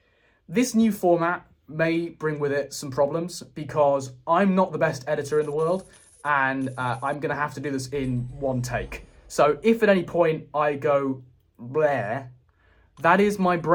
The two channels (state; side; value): identical; both; correlation 1.00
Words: this new format may bring with it some problems because I'm not the best editor in the world and I'm going to have to do this in one take. So if at any point I go bleh, that is my